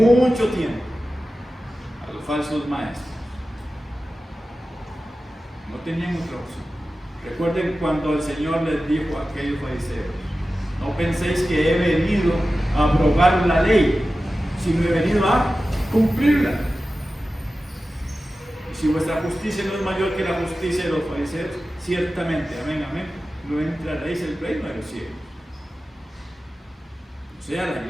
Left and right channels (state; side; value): normal; both; correlation 0.94